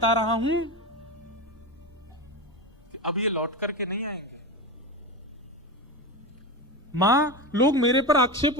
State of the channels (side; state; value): left; noise; rumble, 27 dB below the sound